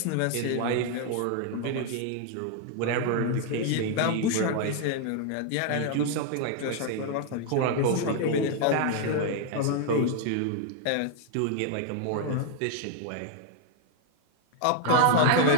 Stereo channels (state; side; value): different; both; correlation 0.00